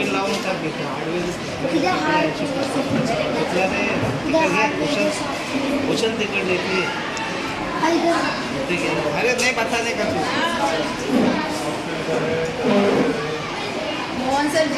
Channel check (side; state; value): both; identical; correlation 1.00